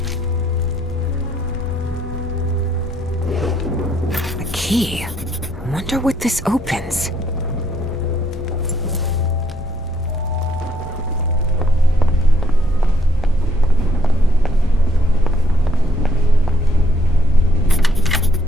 A key. I wonder what this opens.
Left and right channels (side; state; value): both; normal; correlation 0.70